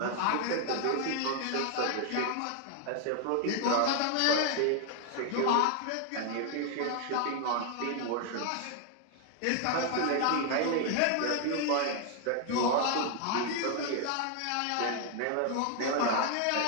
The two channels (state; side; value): different; both; correlation 0.00